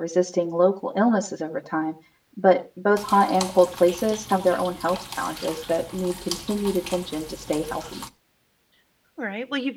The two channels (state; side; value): identical; both; correlation 1.00